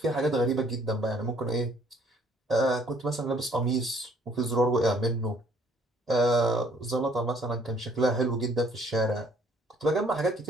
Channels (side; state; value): both; normal; correlation 0.61